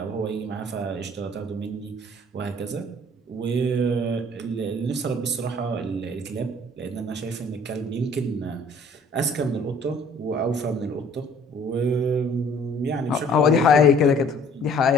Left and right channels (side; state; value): both; normal; correlation 0.55